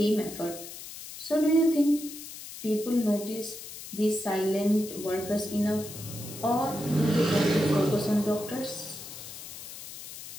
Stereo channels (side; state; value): left; noise; hiss, 12 dB below the sound